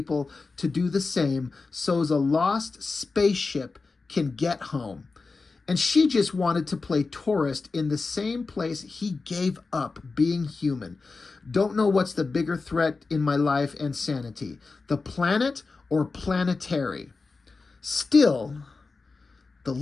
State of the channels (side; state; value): right; quieter; 4.1 dB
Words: to do the same so as a lost spaceship can get home. And she just wanted to play tourist in the same place he gave up being human. Don't know what's the bigger threat in my life and sanity, the planet or Planetary. Still, the